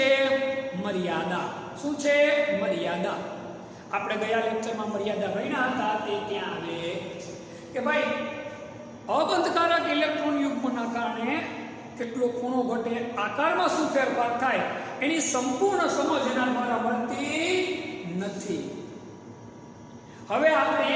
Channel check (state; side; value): identical; both; correlation 1.00